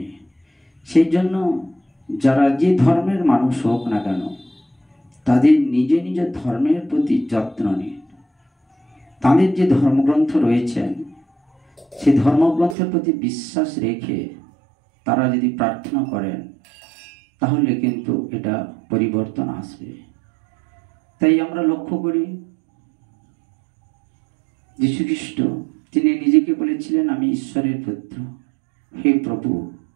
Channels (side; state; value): left; drops out; at 12.8 s